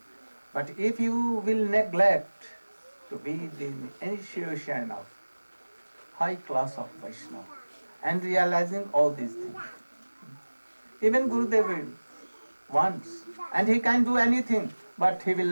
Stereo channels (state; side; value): inverted; both; correlation -1.00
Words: But if you will neglect to be the initiation of high class of Vaishnava and realizing all these things, even Gurudev will once, and he can do anything, but he will